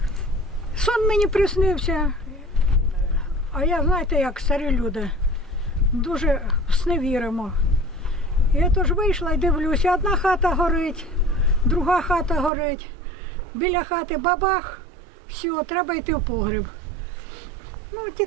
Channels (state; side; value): drops out; left; at 12.5 s